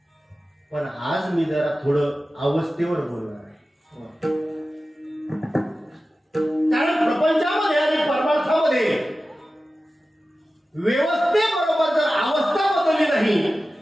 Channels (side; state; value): both; normal; correlation 0.95